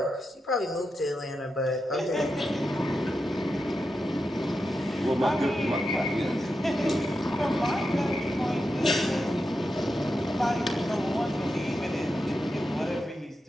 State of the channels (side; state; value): both; normal; correlation 0.88